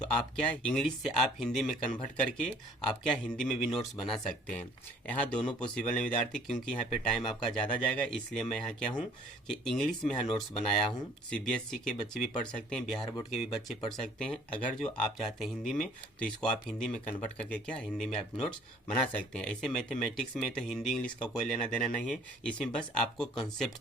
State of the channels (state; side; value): normal; both; correlation 0.55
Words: आप क्या इंग्लिश से आप हिंदी में कन्वर्ट करके आप क्या हिंदी में भी नोट्स बना सकते हैं। यहाँ दोनों पॉसिबल है विद्यार्थी, क्योंकि यहाँ पे टाइम आपका ज़्यादा जाएगा, इसलिए मैं यहाँ क्या हूँ कि इंग्लिश में यहाँ नोट्स बनाया हूँ। सीबीएसई के बच्चे भी पढ़ सकते हैं, बिहार बोर्ड के भी बच्चे पढ़ सकते हैं। अगर जो आप चाहते हैं हिंदी में तो इसको आप हिंदी में कन्वर्ट करके क्या हिंदी में आप नोट्स बना सकते हैं। ऐसे मैथमेटिक्स में तो हिंदी इंग्लिश का कोई लेना देना नहीं है, इसमें बस आपको कॉन्सेप्ट